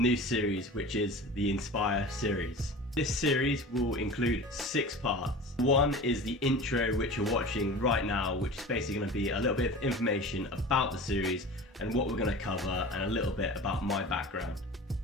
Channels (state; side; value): normal; both; correlation 0.36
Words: series, which is the Inspire series. This series will include 6 parts. One is the intro, which you're watching right now, which is basically going to be a little bit of information about the series and what we're going to cover, and a little bit about my background.